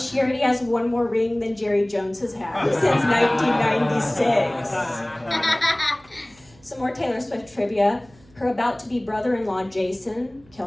already has one more ring than Jerry Jones has had since 1996. Some more Taylor Swift trivia. Her about-to-be brother-in-law, Jason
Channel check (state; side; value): noise; right; hum, 28 dB below the sound